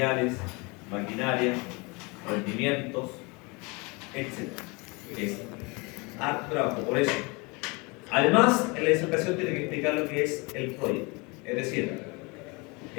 maquinaria, rendimientos, etc. Es harto trabajo, por eso. Además, en la disertación tiene que explicar lo que es el Project, es decir,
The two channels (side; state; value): right; quieter; 27.9 dB